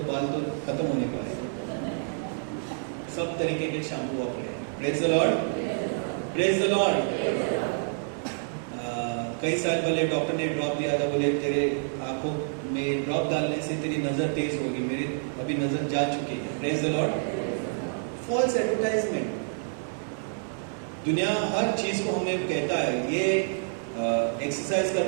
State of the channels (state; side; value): silent; left; 59 dB below the other